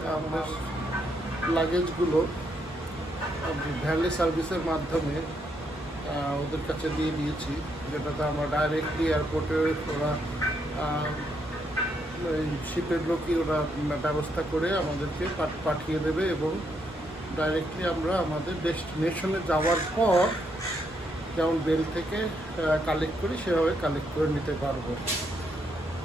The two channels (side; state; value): both; normal; correlation 0.76